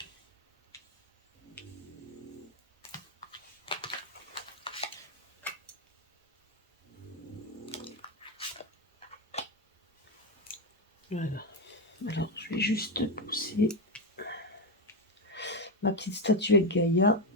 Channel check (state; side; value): normal; both; correlation 0.08